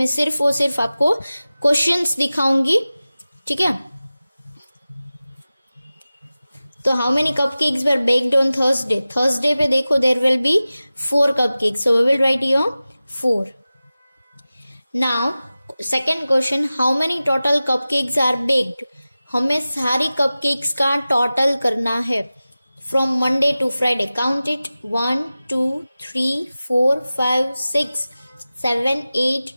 सिर्फ और सिर्फ आपको क्वेश्चंस दिखाऊंगी. ठीक है. तो how many cupcakes were baked on Thursday. Thursday पे देखो there will be 4 cupcakes. So we will write here 4. Now second question, how many total cupcakes are baked. हमें सारी कपकेक्स का टोटल करना है from Monday to Friday. Count it. 1, 2, 3, 4, 5, 6, 7, 8,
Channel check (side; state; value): both; inverted; correlation -0.96